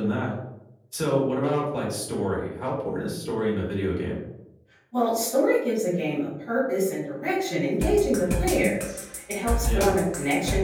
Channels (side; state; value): both; identical; correlation 1.00